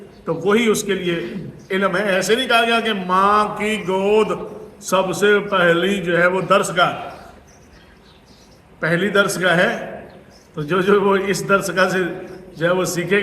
تو وہی اس کے لیے علم ہے. ایسے نہیں کہا گیا کہ ماں کی گود سب سے پہلی جو ہے وہ درسگاہ، پہلی درسگاہ ہے. تو جو وہ اس درسگاہ سے جو ہے وہ سیکھے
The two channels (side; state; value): both; identical; correlation 1.00